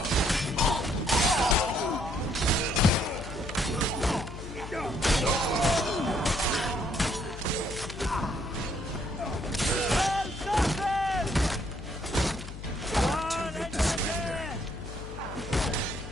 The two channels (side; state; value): left; noise; hum, 11 dB below the sound